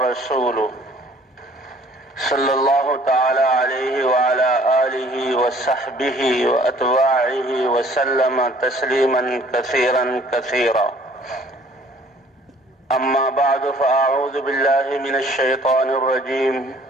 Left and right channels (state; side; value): normal; both; correlation 0.56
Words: صلى الله تعالى عليه وعلى آله وصحبه وأتباعه وسلم تسليما كثيرا كثيرا. أما بعد فأعوذ بالله من الشيطان الرجيم.